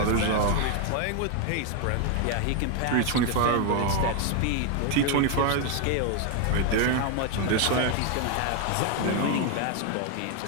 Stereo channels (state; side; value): different; both; correlation 0.01